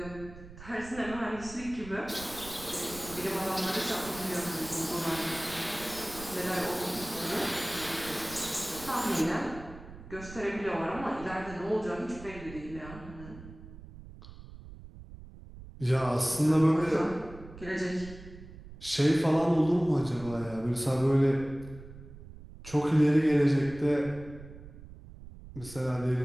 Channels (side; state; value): right; noise; rumble, 16 dB below the sound